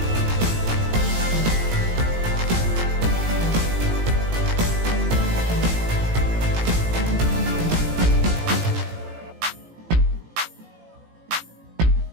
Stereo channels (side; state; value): left; late; 18 ms